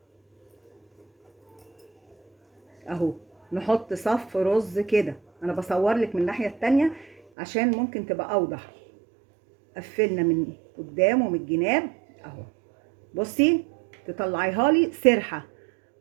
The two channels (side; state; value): left; drops out; at 7.2 s